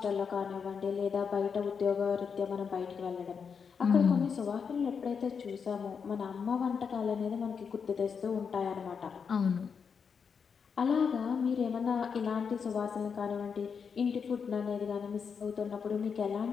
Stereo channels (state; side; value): quieter; right; 6.2 dB